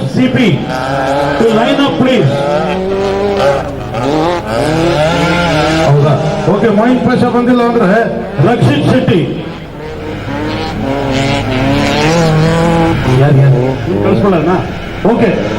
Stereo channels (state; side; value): identical; both; correlation 1.00